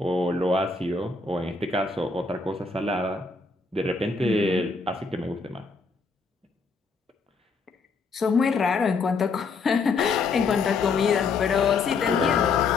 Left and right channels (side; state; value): right; quieter; 4.4 dB